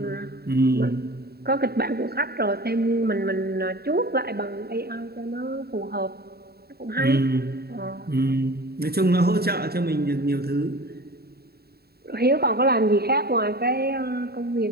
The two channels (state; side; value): late; left; 0.46 ms